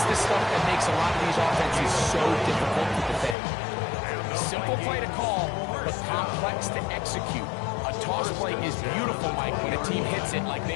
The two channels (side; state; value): right; drops out; at 3.4 s